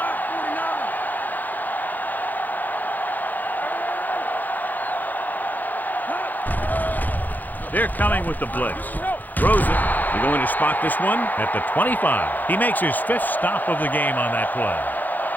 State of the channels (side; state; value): right; late; 0.084 ms